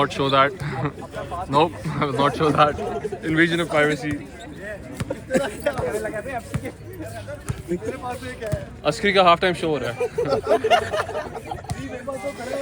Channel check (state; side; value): identical; both; correlation 1.00